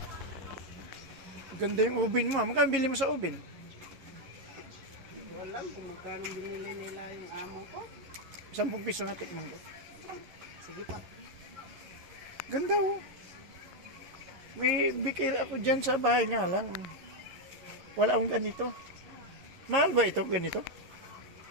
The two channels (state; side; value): late; left; 11 ms